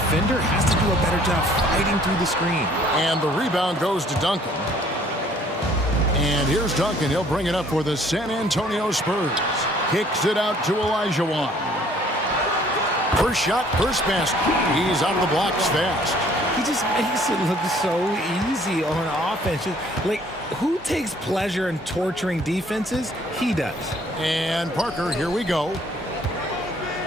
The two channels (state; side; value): normal; both; correlation 0.58